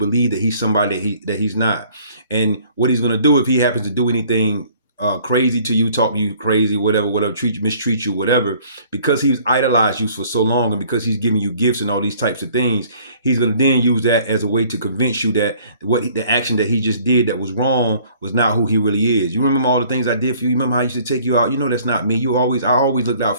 that he's somebody that he's not. And what he's going to do if he happens to do anything crazy to you, talk to you crazy, whatever, mistreat you, whatever, because he's idolized you for so long, and because he's giving you gifts and all these types of things, he's going to then use that as a way to convince you that the action that he just did that was wrong was not who he really is. You remember all the things I did for you? You remember how I used to take you out? You know that's not me. I always looked out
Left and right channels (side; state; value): both; inverted; correlation -0.56